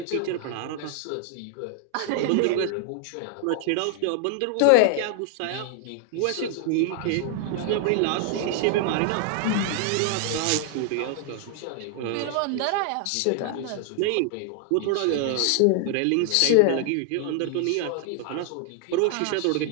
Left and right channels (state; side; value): different; both; correlation 0.00